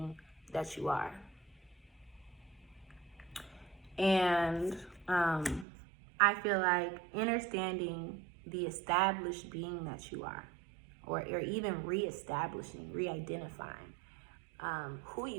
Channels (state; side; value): drops out; left; at 5.7 s